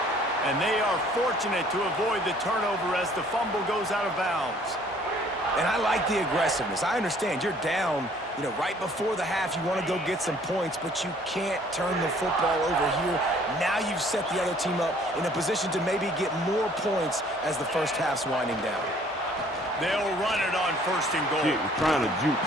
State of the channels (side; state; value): both; normal; correlation 0.57